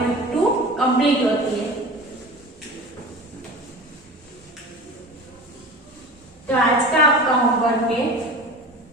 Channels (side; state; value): both; normal; correlation 0.35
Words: कंप्लीट होती है। तो आज का आपका होमवर्क है,